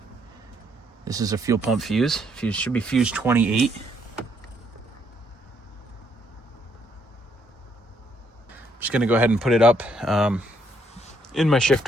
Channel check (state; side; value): normal; both; correlation 0.71